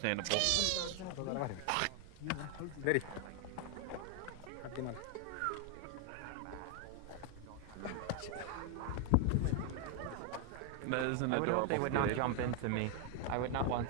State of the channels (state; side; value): different; both; correlation 0.01